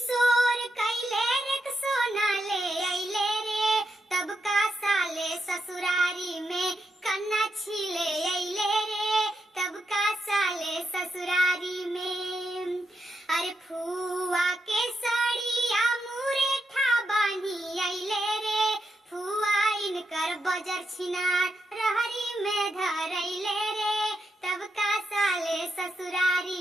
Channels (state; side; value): normal; both; correlation 0.83